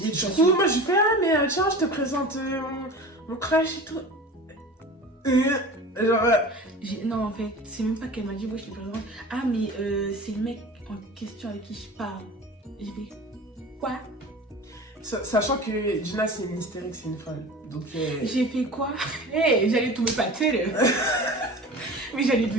Et du coup, moi, je fais, mais tiens, je te présente mon crush et tout. Genre... Non, en fait, c'est même pas qu'elle m'a dit, ouais, je te présente. Ah, mais c'est le mec en question avec qui je parle. J'ai fait, quoi? Sachant que Gina, c'est une hystérique, c'est une folle. Donc... J'ai fait quoi? J'allais tomber pâtée, là. Mais j'allais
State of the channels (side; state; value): both; normal; correlation 0.36